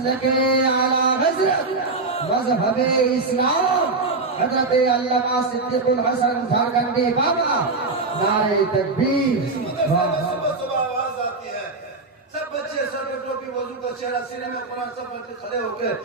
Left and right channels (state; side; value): quieter; left; 3.6 dB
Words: आला हज़रत मज़हब इस्लाम हज़रत अल्लामा सिद्दीक़ुल हसन झारखंडी बाबा, नारे तकबीर। आवाज आती है, सब बच्चे सर पे टोपी, वजू का चेहरा, सीने में कुरान, सब बच्चे खड़े होकर